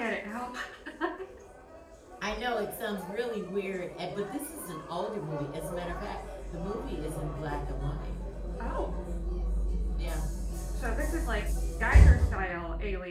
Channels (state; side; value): identical; both; correlation 1.00